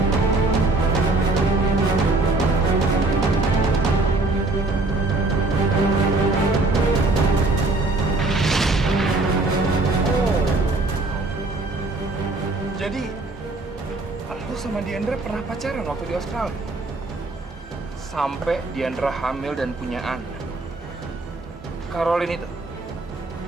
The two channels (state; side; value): quieter; left; 3.2 dB